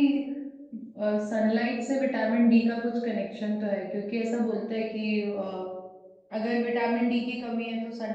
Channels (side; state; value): both; identical; correlation 1.00